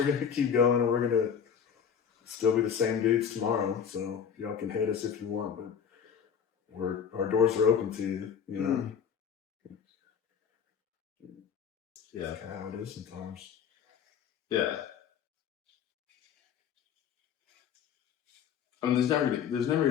going to keep going, and we're going to still be the same dudes tomorrow. So y'all can hate us if you want, but our doors are open to you, Yeah. That's kind of how it is sometimes. Yeah. I mean, there's never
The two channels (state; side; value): quieter; right; 7.6 dB